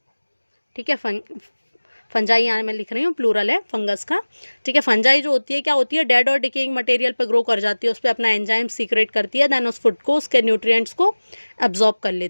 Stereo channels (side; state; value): both; inverted; correlation -1.00